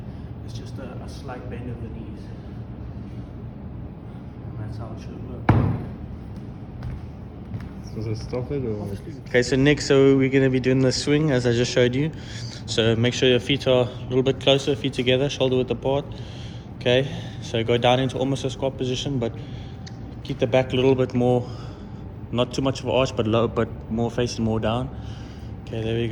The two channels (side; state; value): both; identical; correlation 1.00